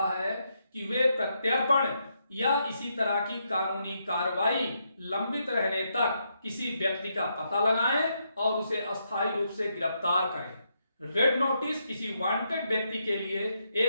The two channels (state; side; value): inverted; both; correlation -0.80